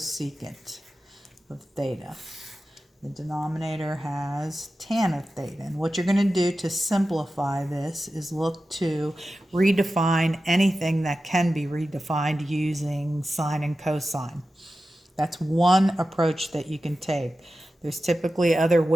of theta. The denominator has tan of theta. And what you're going to do to simplify this is look to redefine anything that can be redefined using sine and cosine. That's one approach that you can take. There's typically other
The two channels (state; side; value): normal; both; correlation 0.93